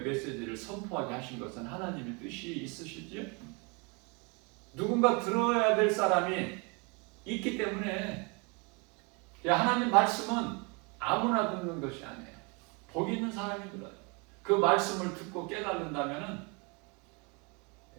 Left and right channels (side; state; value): left; quieter; 31.0 dB